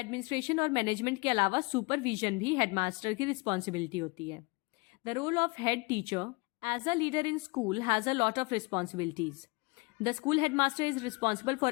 और मैनेजमेंट के अलावा सुपरविजन भी हेडमास्टर की रिस्पॉन्सिबिलिटी होती है। The role of head teacher as a leader in school has a lot of responsibilities. The school headmaster is responsible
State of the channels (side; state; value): right; quieter; 27.7 dB